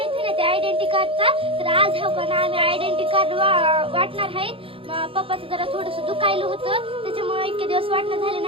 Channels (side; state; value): left; late; 0.26 ms